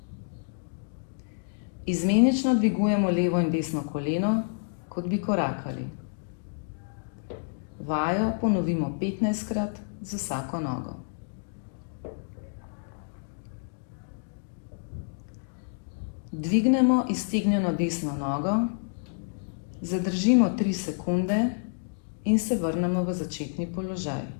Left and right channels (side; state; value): right; silent; digital silence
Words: Izmenično dvigujemo levo in desno koleno, kot bi korakali. Vajo ponovimo 15-krat z vsako nogo. Dvignemo iztegnjeno desno nogo, zadržimo 3 sekunde in se vrnemo v začetni položaj.